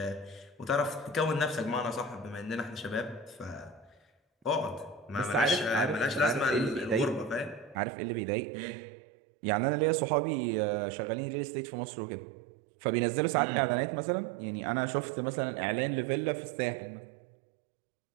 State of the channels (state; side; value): drops out; left; at 7.8 s